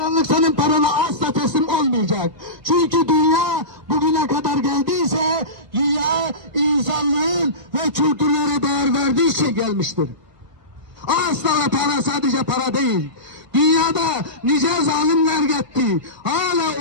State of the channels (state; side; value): late; left; 1.5 ms